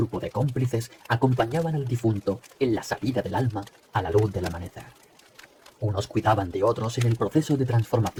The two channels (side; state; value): both; identical; correlation 1.00